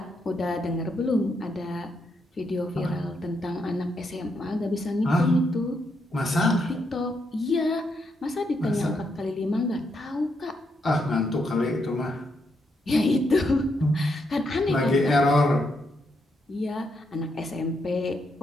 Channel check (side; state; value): both; normal; correlation 0.79